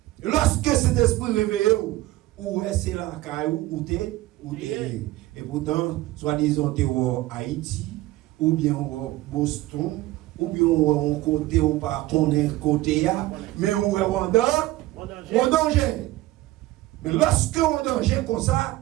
Lorsque cet esprit réveillé, ou c'est la caillou, ou t'es. Et pourtant, soi-disant, t'es au Haïti, ou bien au Boston, ou bien on côté ou pas qu'on est côté mais on est en danger. Mais lorsque on est en danger comme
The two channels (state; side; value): quieter; left; 17.4 dB